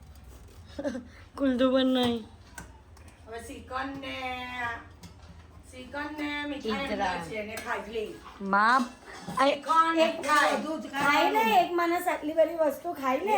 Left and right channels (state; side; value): identical; both; correlation 1.00